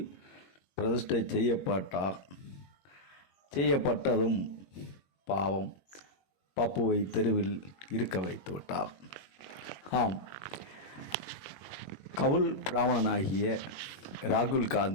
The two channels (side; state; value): right; late; 21 ms